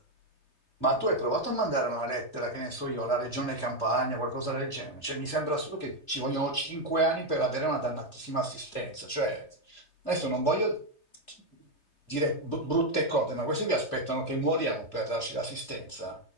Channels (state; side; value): late; right; 2.7 ms